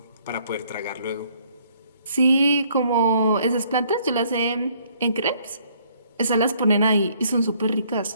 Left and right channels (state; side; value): inverted; both; correlation -0.64